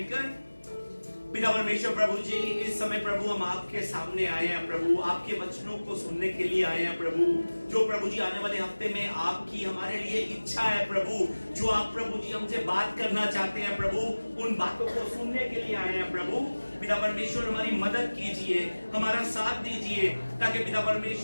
पिता परमेश्वर प्रभु जी, इस समय प्रभु हम आपके सामने आए हैं प्रभु, आपके वचनों को सुनने के लिए आए हैं प्रभु। जो प्रभु जी आने वाले हफ्ते में आपकी हमारे लिए इच्छा है प्रभु, जो आप प्रभु जी हमसे बात करना चाहते हैं प्रभु, उन बातों को सुनने के लिए आए हैं प्रभु। पिता परमेश्वर हमारी मदद कीजिए, हमारा साथ दीजिए, ताकि पिता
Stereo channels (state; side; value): inverted; both; correlation -1.00